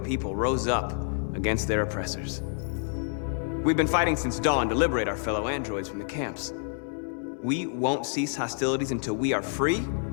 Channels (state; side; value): silent; right; 59 dB below the other